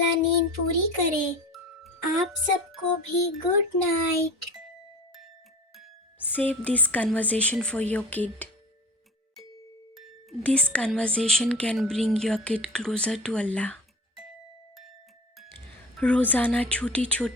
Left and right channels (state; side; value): normal; both; correlation 0.35